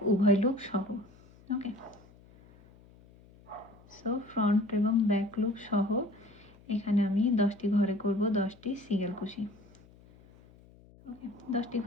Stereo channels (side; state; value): left; noise; hum, 25 dB below the sound